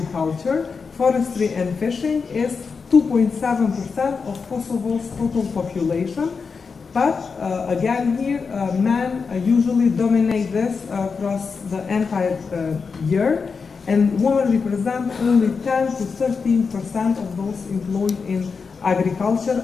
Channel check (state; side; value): quieter; right; 5.2 dB